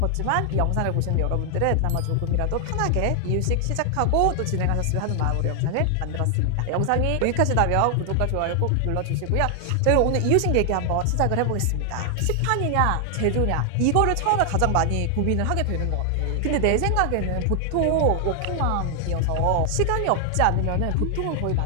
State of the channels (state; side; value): different; both; correlation 0.00